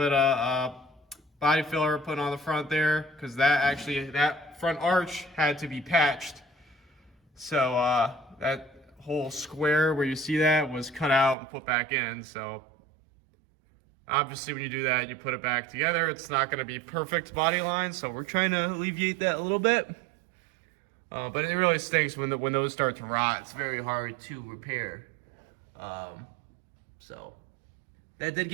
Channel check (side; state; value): left; drops out; at 11.4 s